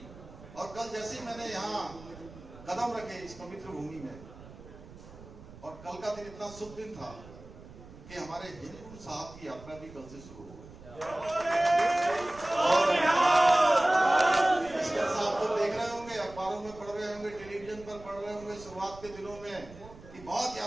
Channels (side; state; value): right; noise; rumble, 18 dB below the sound